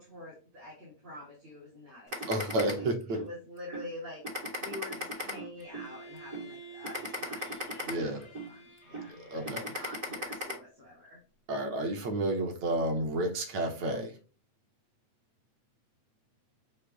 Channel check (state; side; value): late; left; 8.8 ms